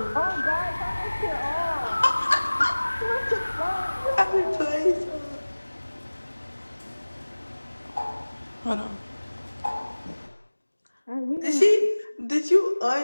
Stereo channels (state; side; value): inverted; both; correlation -1.00